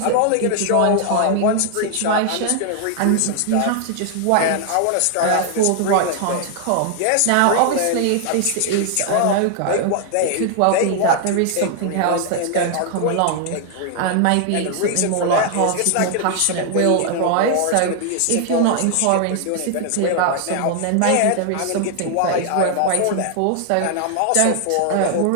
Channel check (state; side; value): different; both; correlation 0.00